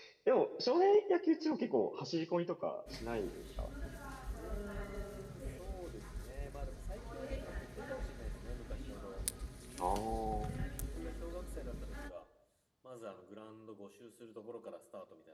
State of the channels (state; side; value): identical; both; correlation 1.00